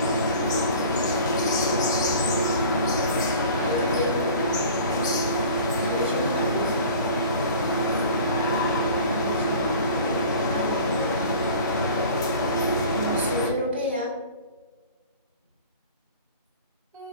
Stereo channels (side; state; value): both; inverted; correlation -0.43